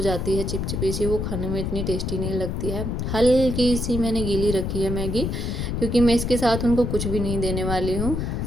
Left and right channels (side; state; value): left; noise; rumble, 2 dB below the sound